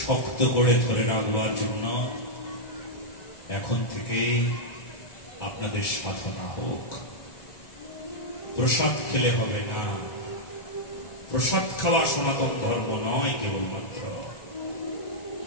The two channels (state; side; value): late; right; 1.9 ms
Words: শক্ত করে ধরে রাখবার জন্য এখন থেকে আপনাদের সাধনা হোক। প্রসাদ খেলে হবে না। প্রসাদ খাওয়া সনাতন ধর্ম নয় কেবলমাত্র।